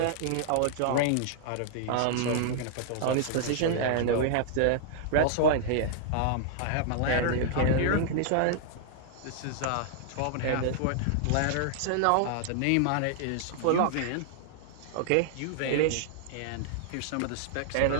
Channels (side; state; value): both; different; correlation -0.01